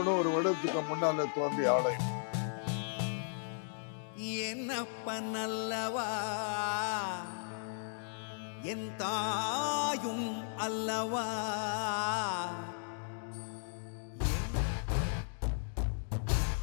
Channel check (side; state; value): right; silent; digital silence